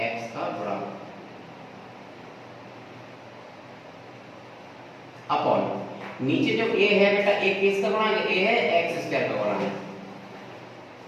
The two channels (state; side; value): identical; both; correlation 1.00